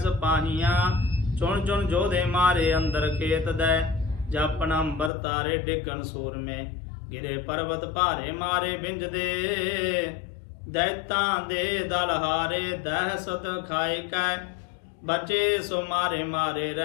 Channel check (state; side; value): drops out; right; at 5.1 s